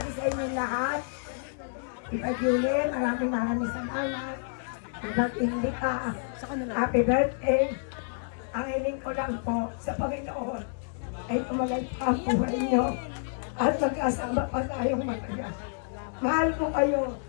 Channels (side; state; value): right; silent; 59 dB below the other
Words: sa inyo lahat. Iba Julie, maraming salamat. Iba't hindi ka. Happy birthday. Ang hiling ko lang po sa Panginoon ay tumalay pa ang buhay niyo at magkasama pa tayong matagal. Mahal ko kayo,